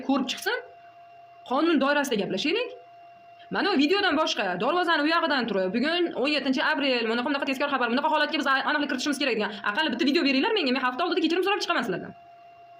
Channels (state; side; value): identical; both; correlation 1.00